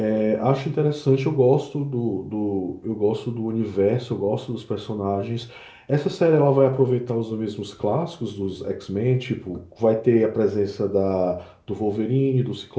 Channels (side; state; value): both; identical; correlation 1.00